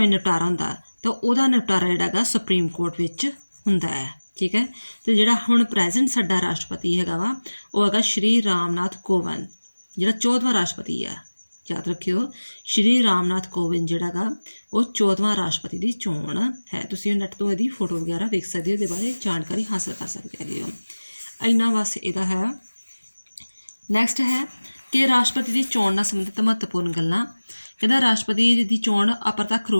ਨਿਪਟਾਰਾ ਹੁੰਦਾ? ਤਾਂ ਉਹਦਾ ਨਿਪਟਾਰਾ ਜਿਹੜਾ ਹੈਗਾ ਸੁਪਰੀਮ ਕੋਰਟ ਵਿੱਚ ਹੁੰਦਾ ਹੈ। ਠੀਕ ਹੈ। ਅਤੇ ਜਿਹੜਾ ਹੁਣ ਪ੍ਰੈਜ਼ੈਂਟ ਸਾਡਾ ਰਾਸ਼ਟਰਪਤੀ ਹੈਗਾ ਵਾ, ਉਹ ਹੈਗਾ ਸ਼੍ਰੀ ਰਾਮਨਾਥ ਕੋਵਿੰਦ, ਜਿਹੜਾ 14ਵਾਂ ਰਾਸ਼ਟਰਪਤੀ ਹੈ। ਯਾਦ ਰੱਖਿਓ, ਸ਼੍ਰੀ ਰਾਮਨਾਥ ਕੋਵਿੰਦ ਜਿਹੜਾ ਹੈਗਾ ਉਹ 14ਵਾਂ ਰਾਸ਼ਟਰਪਤੀ ਦੀ ਚੋਣ ਹੈ। ਤੁਸੀਂ ਨੈੱਟ ਤੋਂ ਇਹਦੀ ਫੋਟੋ ਵਗੈਰਾ ਵੇਖ ਸਕਦੇ ਹੋ, ਇਹਦੇ ਬਾਰੇ ਜਾਣਕਾਰੀ ਹਾਸਲ ਕਰ ਸਕਦੇ ਹੈਗੇ ਹੋ। ਇੰਨਾ ਬਸ ਇਹਦਾ ਹੈ। ਨੈਕਸਟ ਹੈ ਕਿ ਰਾਸ਼ਟਰਪਤੀ ਦੀ ਚੋਣ ਨਾਲ ਸੰਬੰਧਿਤ ਮਹੱਤਵਪੂਰਨ ਗੱਲਾਂ। ਕਹਿੰਦਾ ਰਾਸ਼ਟਰਪਤੀ ਦੀ ਚੋਣ ਅਪਰਤੱਖ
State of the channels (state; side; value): inverted; both; correlation -1.00